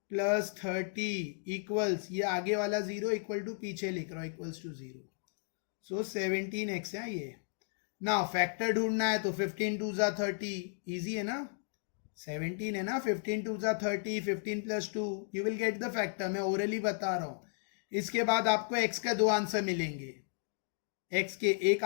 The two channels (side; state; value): right; silent; digital silence